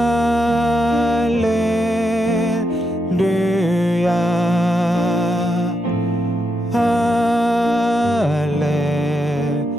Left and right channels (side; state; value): both; normal; correlation 0.82